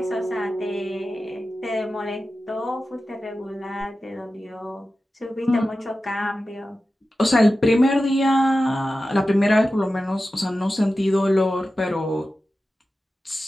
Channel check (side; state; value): both; normal; correlation 0.93